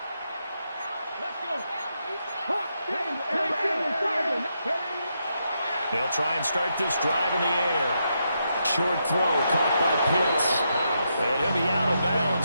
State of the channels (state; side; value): inverted; both; correlation -0.81